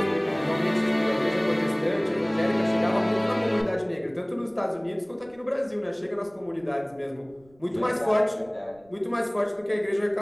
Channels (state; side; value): noise; right; rumble, 29 dB below the sound